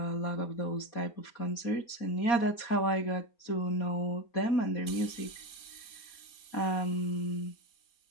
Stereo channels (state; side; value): late; right; 4.2 ms